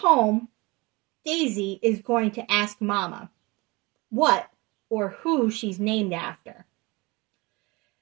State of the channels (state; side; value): quieter; left; 24.7 dB